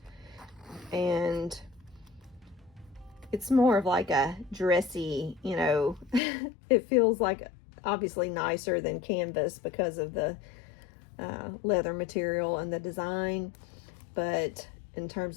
And it's more of like a dressy, you know, it feels like obviously nicer than canvas because of the leather material and the design. But in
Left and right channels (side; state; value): right; drops out; at 6.2 s